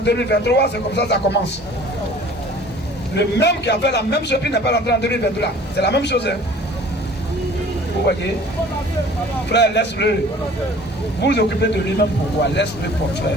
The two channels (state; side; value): normal; both; correlation 0.48